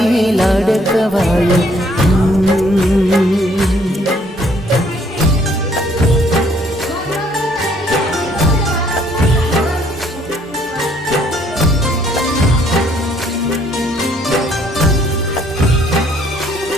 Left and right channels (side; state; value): both; normal; correlation 0.64